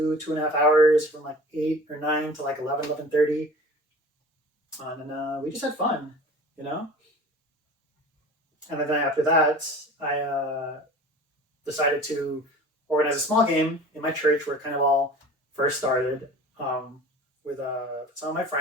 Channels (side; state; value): both; normal; correlation 0.41